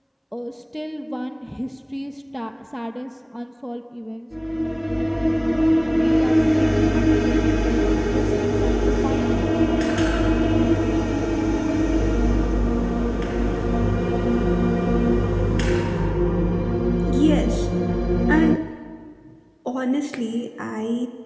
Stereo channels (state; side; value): identical; both; correlation 1.00